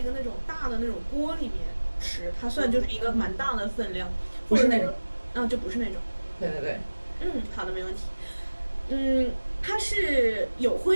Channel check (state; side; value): inverted; both; correlation -1.00